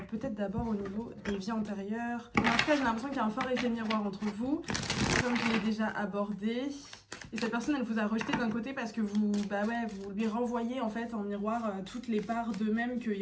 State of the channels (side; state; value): both; identical; correlation 1.00